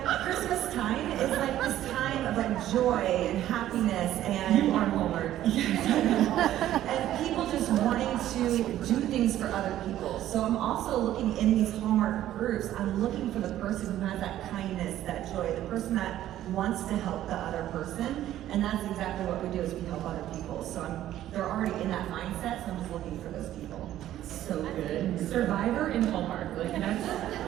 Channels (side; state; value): left; quieter; 12.8 dB